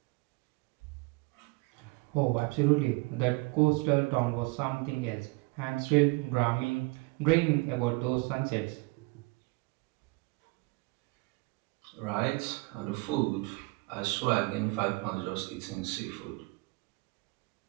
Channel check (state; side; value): quieter; left; 26.3 dB